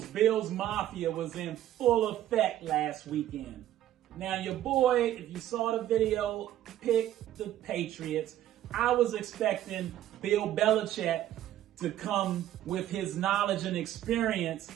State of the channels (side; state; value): left; quieter; 12.7 dB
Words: Mafia was in full effect last weekend. Now, your boy, if you saw the video, picked the Patriots. I was expecting Bill Belichick to come with his knowledge and experience,